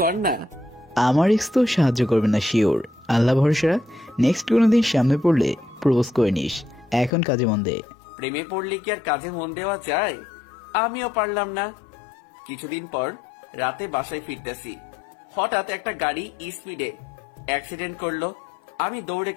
কর না। আমার এক্স তো সাহায্য করবে না শিওর। আল্লাহ ভরসা, নেক্সট কোনোদিন সামনে পড়লে প্রপোজ করে নিস। এখন কাজে মন দে। প্রেমে পড়লে কি আর কাজে মন দেওয়া যায়? আমিও পারলাম না। কিছুদিন পর রাতে বাসায় ফিরতেছি, হঠাৎ একটা গাড়ি স্পিডে অ্যাক্সিডেন্ট করলো। আমি দৌড়ে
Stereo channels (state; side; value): drops out; right; at 7.1 s